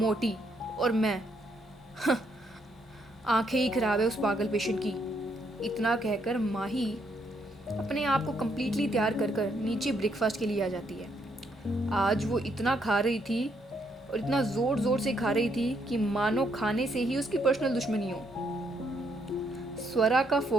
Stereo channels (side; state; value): both; normal; correlation 0.74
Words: और मैं आंखें ही खराब है उस पागल पेशेंट की। इतना कहकर माही अपने आप को कम्प्लीटली तैयार कर कर नीचे ब्रेकफास्ट के लिए आ जाती है। आज वो इतना खा रही थी और इतना जोर जोर से खा रही थी कि मानो खाने से ही उसकी पर्सनल दुश्मनी हो। स्वरा का